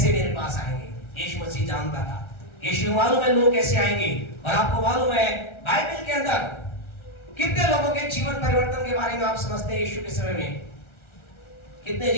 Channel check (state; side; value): late; right; 1.4 ms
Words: मेरे पास आएंगे। यीशु मसीह जानता था, यीशु मालूम है लोग कैसे आएंगे। और आपको मालूम है बाइबल के अंदर कितने लोगों के जीवन परिवर्तन के बारे में आप समझते हैं यीशु के समय में? कितने